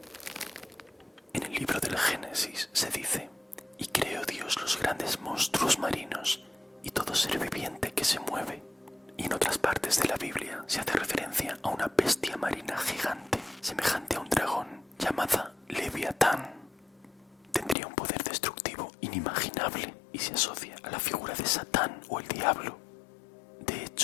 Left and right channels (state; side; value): drops out; right; at 17.8 s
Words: En el libro del Génesis se dice: «Y creó Dios los grandes monstruos marinos y todo ser viviente que se mueve». Y en otras partes de la Biblia se hace referencia a una bestia marina gigante, semejante a un dragón, llamada Leviatán. Tendría un poder destructivo inimaginable y se asocia a la figura de Satán o el diablo. De